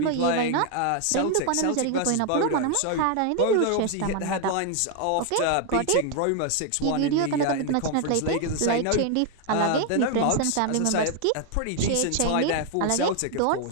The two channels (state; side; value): different; both; correlation 0.00